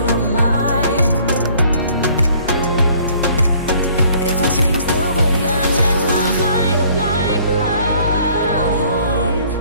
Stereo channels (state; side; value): inverted; both; correlation -0.57